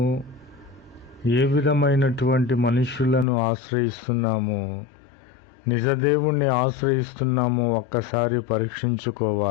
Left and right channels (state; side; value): drops out; right; at 3.2 s